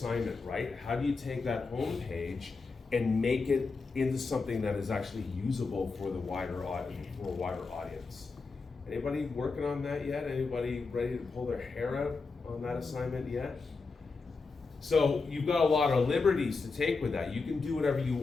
right? How do you take that homepage and make it into something that is actually usable for the wider audience? Anybody working on that yet? Anybody ready to pull their hair out on that assignment yet? So you've got a lot of liberties to take with that. You can do whatever you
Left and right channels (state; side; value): quieter; right; 4.3 dB